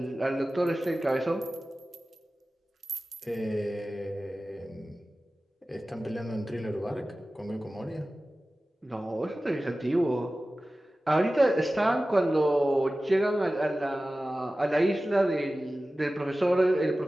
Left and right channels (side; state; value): both; normal; correlation 0.96